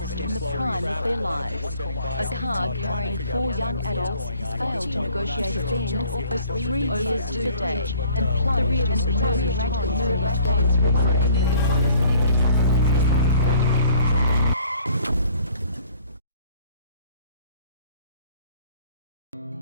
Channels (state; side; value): inverted; both; correlation -0.55